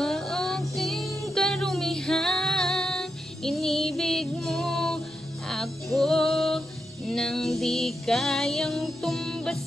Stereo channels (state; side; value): noise; right; rumble, 30 dB below the sound